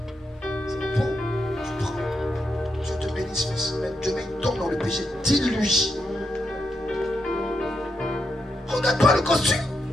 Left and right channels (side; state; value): both; normal; correlation 0.83